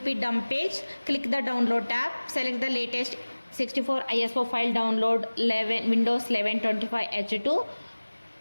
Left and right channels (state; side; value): inverted; both; correlation -1.00